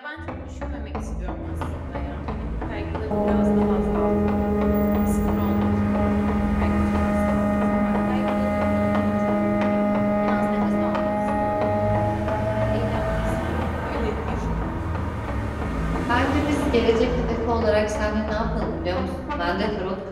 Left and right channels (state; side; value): identical; both; correlation 1.00